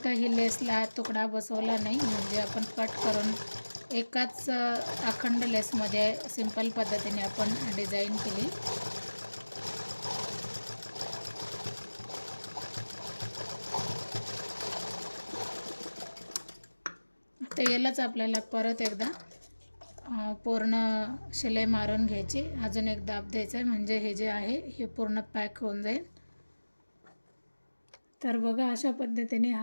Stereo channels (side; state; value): both; inverted; correlation -1.00